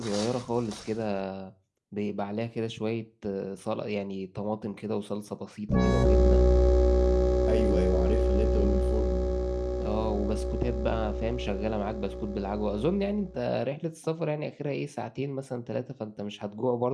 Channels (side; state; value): both; identical; correlation 1.00